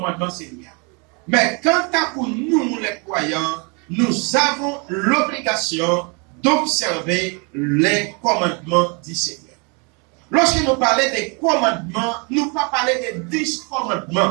Seigneur. Mais quant à pour nous, les croyants, nous avons l'obligation d'observer les commandements du Seigneur. Lorsque nous parlons des commandements, nous ne parlons pas des 10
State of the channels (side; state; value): left; quieter; 33.2 dB